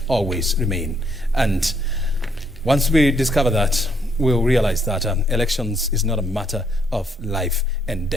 always remain. And once we discover that, we'll realize that elections is not a matter of life and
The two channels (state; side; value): normal; both; correlation 0.71